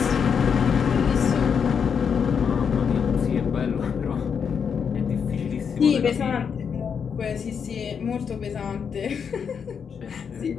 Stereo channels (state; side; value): quieter; right; 6.8 dB